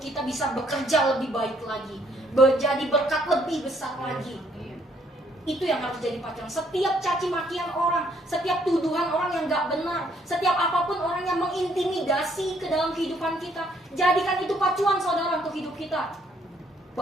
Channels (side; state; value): both; normal; correlation 0.67